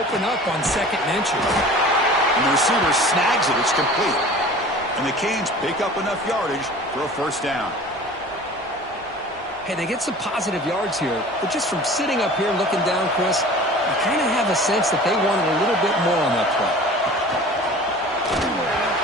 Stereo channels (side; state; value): both; normal; correlation 0.42